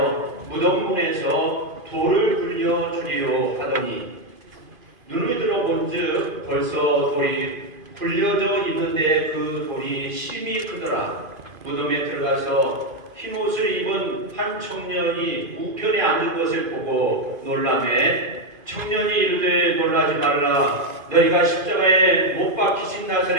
무덤 문에서 돌을 굴려 주리요 하더니 눈을 들어 본즉 벌써 돌이 굴려져 있는데 그 돌이 심히 크더라. 무덤에 들어가서 흰 옷을 입은 한 청년이 우편에 앉은 것을 보고 놀라매 청년이 이르되 놀라지 말라. 너희가 십자가에 못 박히신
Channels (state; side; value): late; left; 2.5 ms